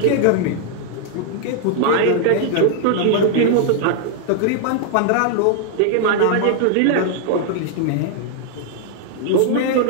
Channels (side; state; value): both; different; correlation 0.00